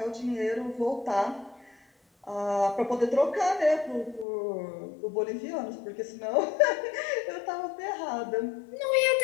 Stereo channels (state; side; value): drops out; right; at 4.2 s